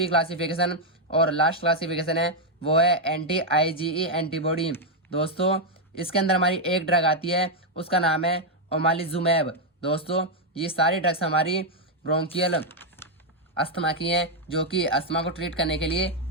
क्लासिफिकेशन और लास्ट क्लासिफिकेशन है वो है एंटी IgE एंटीबॉडी। दोस्तों, इसके अंदर हमारी एक ड्रग आती है, उसका नाम है ओमालिजुमैब। दोस्तों, ये सारी ड्रग्स हमारी ब्रोंकियल अस्थमा की हैं, जो कि अस्थमा को ट्रीट करने के लिए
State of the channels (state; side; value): normal; both; correlation 0.00